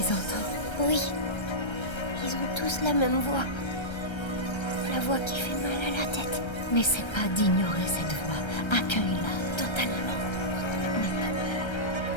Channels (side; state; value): right; late; 1.3 ms